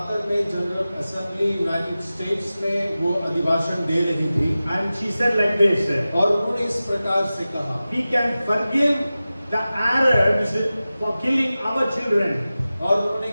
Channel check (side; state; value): both; inverted; correlation -0.95